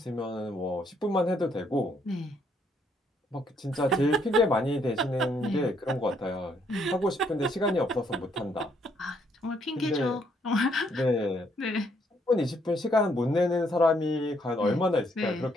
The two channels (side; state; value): both; normal; correlation 0.71